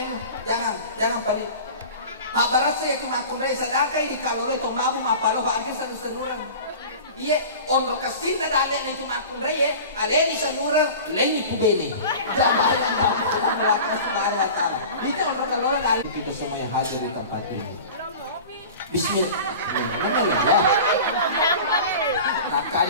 Jangan balik. Mabarat saya cuma kundai sedekah ini kalau itu mau mapalo akhir satu senuran. Dia ondro kasin na dane na cuma kundai ya. Aleni senuran leni kubeni. Jangan itu ondro kalau kali kita semua yang hadir di tempat ini. Bismillah.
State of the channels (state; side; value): inverted; both; correlation -0.37